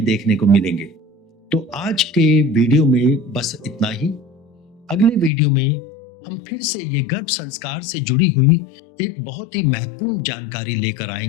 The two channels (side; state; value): right; drops out; at 5.3 s